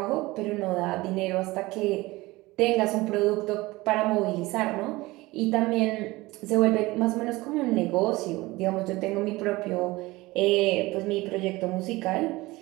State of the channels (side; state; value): left; quieter; 20.5 dB